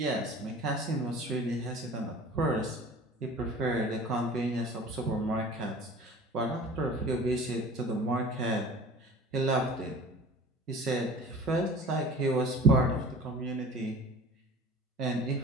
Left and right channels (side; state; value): both; normal; correlation 0.42